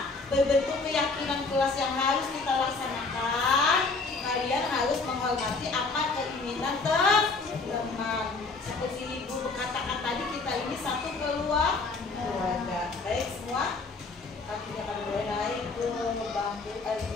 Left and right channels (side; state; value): right; quieter; 4.0 dB